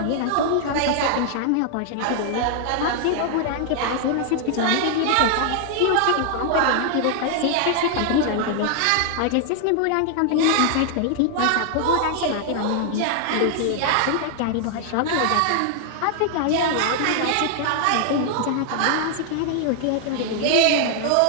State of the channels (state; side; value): different; both; correlation 0.00